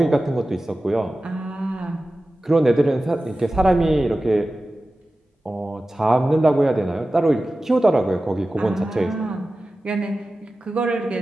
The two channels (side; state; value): both; normal; correlation 0.95